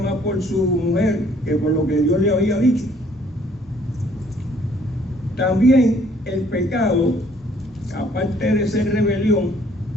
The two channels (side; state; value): both; normal; correlation 0.61